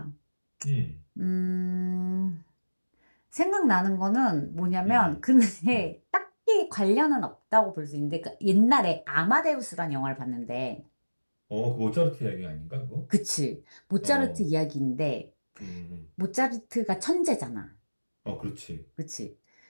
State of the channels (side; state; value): both; inverted; correlation -1.00